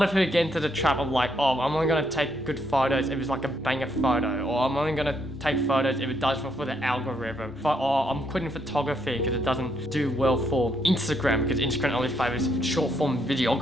of people get into the trap of like, oh, I'm only gonna take good photos if it's like a banger photo, or I'm only gonna take photos if it does for the algorithm. I'm quitting photography because it doesn't do well for Instagram, because Instagram only favors short form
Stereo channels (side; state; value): both; normal; correlation 0.74